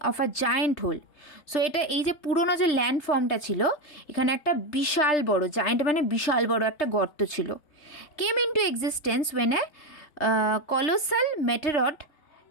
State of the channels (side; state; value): right; late; 3.3 ms